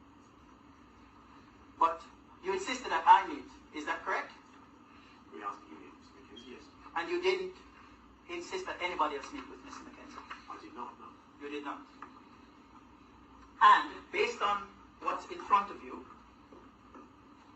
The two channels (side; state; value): both; identical; correlation 1.00